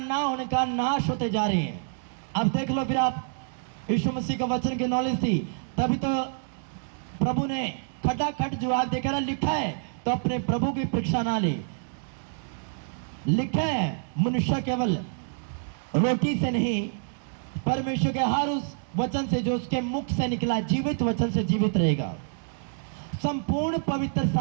ना होने कारण नाश होते जा रहे हैं। अब देख लो फिर आप, यीशु मसीह का वचन की नॉलेज थी तभी तो प्रभु ने खटाखट जवाब देकर लिखा है, तो अपने प्रभु की परीक्षा ना ले। लिखा है मनुष्य केवल रोटी से नहीं, परमेश्वर के हर उस वचन से जो उसके मुख से निकला, जीवित वचन से जीवित रहेगा। संपूर्ण पवित्र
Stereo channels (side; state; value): left; silent; 60 dB below the other